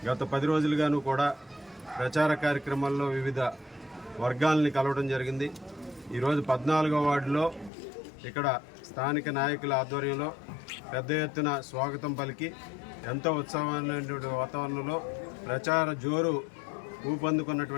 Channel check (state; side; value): drops out; right; at 7.7 s